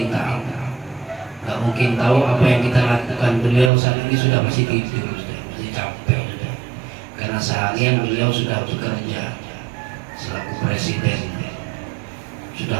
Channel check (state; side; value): drops out; left; at 3.7 s